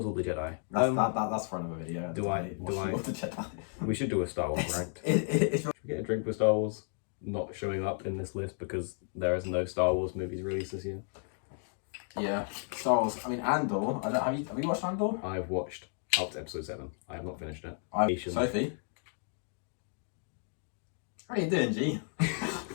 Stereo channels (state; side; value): silent; right; 56 dB below the other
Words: all the Jedi. That's for another video. All the Jedi. We should do a Star Wars ranked. It's Should we get a drink for Star Wars not showing up in this list because there is no Star Wars movies released this year? Yeah, Star Wars. I mean, Andor. Have you watched Andor? I've watched up to episode 7. I have not finished it. Sophie. How are you doing, G?